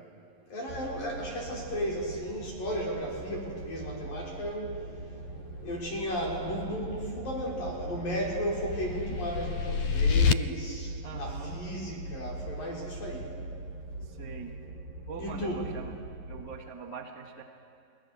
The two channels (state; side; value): late; right; 11 ms